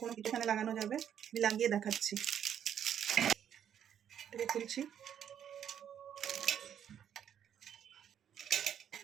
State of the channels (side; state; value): left; quieter; 9.3 dB